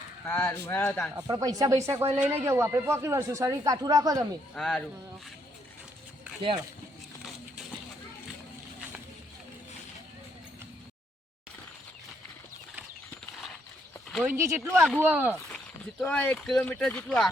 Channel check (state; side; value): normal; both; correlation 0.73